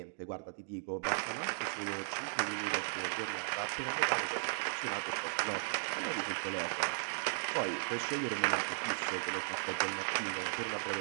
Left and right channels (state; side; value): silent; left; digital silence